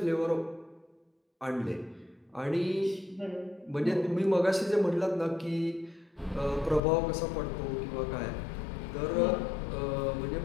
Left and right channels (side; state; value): right; drops out; at 6.8 s